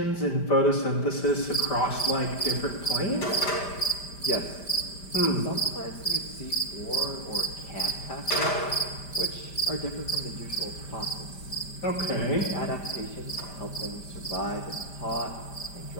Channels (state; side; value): late; right; 5.1 ms